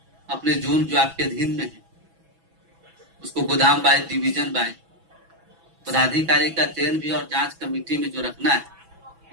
अपने जोन जो आपके अधीन में है उसको गोदाम बाय डिवीजन बाय पदाधिकारी का चयन भी और जांच कमेटी में जो रखना है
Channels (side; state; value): left; late; 6.1 ms